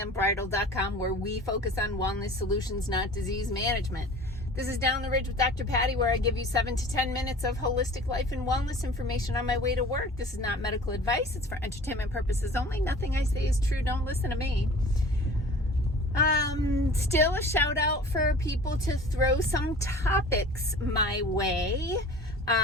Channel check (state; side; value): normal; both; correlation 0.43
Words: where we focus on wellness solutions, not disease management. This is Down the Ridge with Dr. Patty, where I give you 7 to 10 minutes of holistic life and wellness information on my way to work. This is not medical advice. It's for entertainment purposes only. Nothing I say is true. Don't listen to me. Still a shout out for people to throw some topics my way.